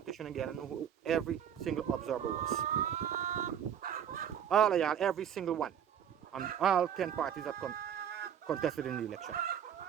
again know who every single observer was. All of y'all, every single one, and all 10 parties that contested in the election,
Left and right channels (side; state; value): left; quieter; 8.9 dB